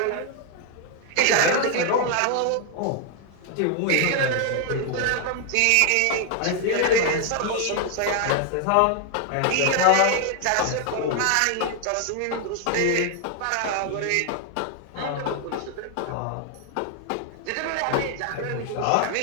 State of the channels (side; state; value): both; different; correlation 0.00